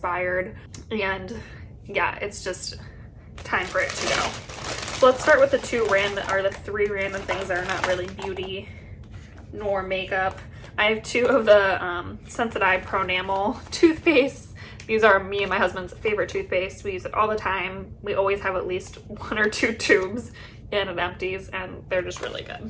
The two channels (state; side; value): identical; both; correlation 1.00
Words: and yeah, it's just time for it to go. So let's start with the three random things that are not really beauty nor makeup. I have two of the Sensodyne Pro Enamel toothpaste. These are me and my husband's favorite toothpaste. We use it all the time. We always have at least 1 or 2 tubes in it empties, and they're just really